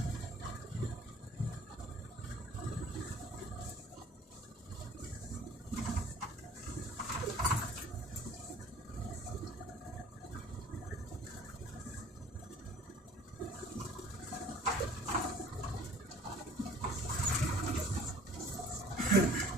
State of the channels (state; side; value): normal; both; correlation 0.51